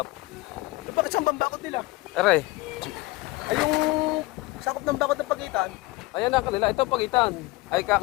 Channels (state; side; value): quieter; right; 21.2 dB